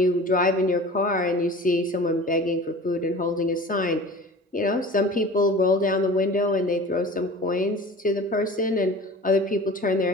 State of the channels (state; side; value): normal; both; correlation 0.40